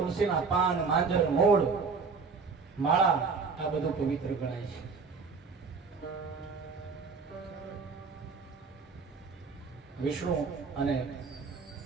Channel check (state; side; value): quieter; left; 4.9 dB